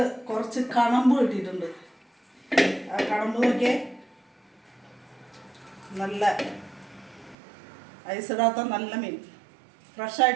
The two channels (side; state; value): left; drops out; at 7.4 s